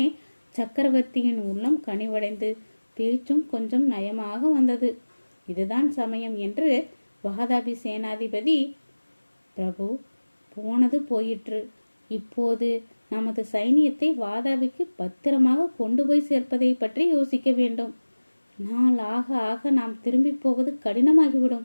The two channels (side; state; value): both; inverted; correlation -1.00